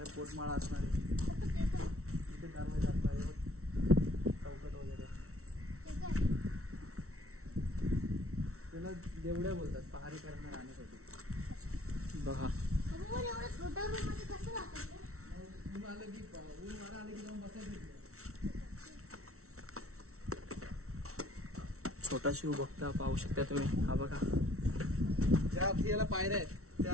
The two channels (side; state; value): left; late; 0.63 ms